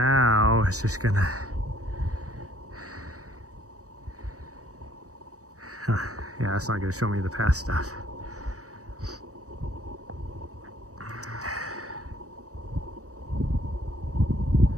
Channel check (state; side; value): late; left; 0.66 ms